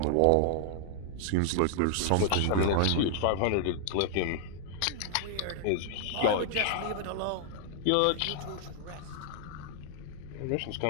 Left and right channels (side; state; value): both; different; correlation -0.01